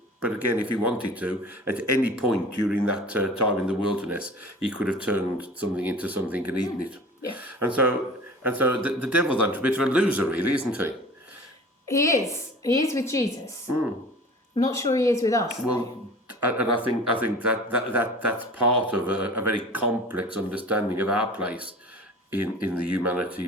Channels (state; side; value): normal; both; correlation 0.41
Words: But again, if he wanted to, at any point during that time in the wilderness, he could have turned something into something and eaten it. Yeah. And so the devil's a bit of a loser, really, isn't he? He is. He is with Jesus. I'm not sure he is with us. Well, and I think that's part of a very complex understanding of our place in the